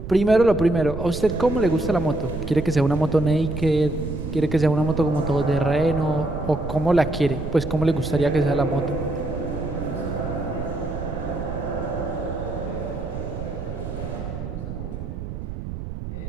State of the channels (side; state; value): right; noise; rumble, 7 dB below the sound